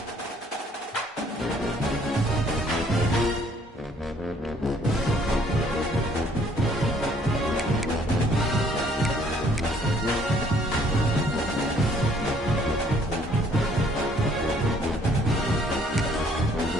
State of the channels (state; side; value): normal; both; correlation 0.62